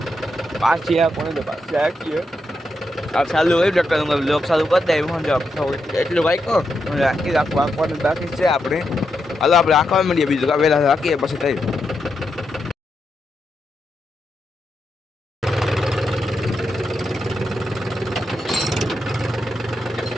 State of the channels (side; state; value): both; normal; correlation 0.84